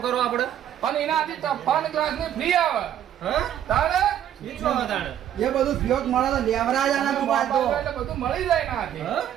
કરો આપણે પણ એનાથી તફાન ગ્લાસ ની ફ્રી આવે. હા તારે મીચો હતાણે એ બધું ફિયોક મળે તો લેવરા જ આના મોબાઈલ તો એટલે બધું મળી જાય નાથી. હા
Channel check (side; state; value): left; quieter; 10.6 dB